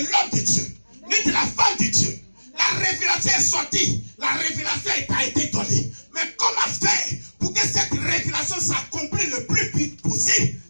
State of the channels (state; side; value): inverted; both; correlation -1.00